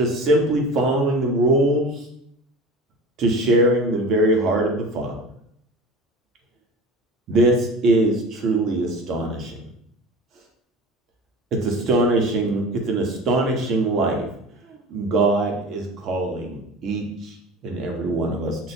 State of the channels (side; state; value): both; normal; correlation 0.36